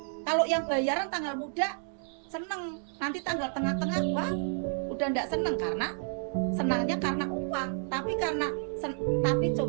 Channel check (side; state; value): left; silent; 57 dB below the other